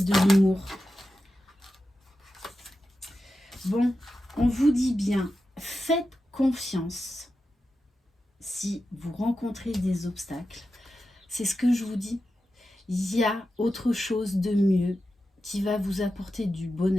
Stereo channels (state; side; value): normal; both; correlation 0.91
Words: l'humour. Bon, on vous dit bien, faites confiance si vous rencontrez des obstacles. C'est ce que je vous dis. Il y a autre chose de mieux qui va vous apporter du